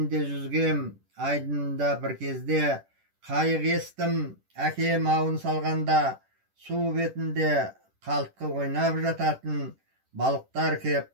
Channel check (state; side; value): late; left; 10 ms